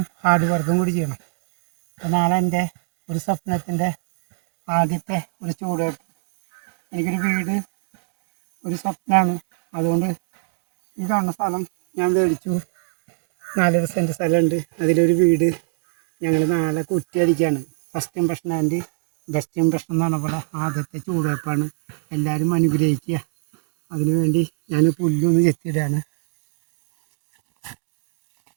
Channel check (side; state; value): left; silent; digital silence